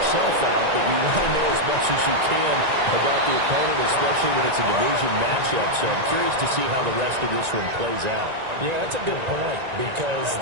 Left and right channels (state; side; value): late; left; 1.9 ms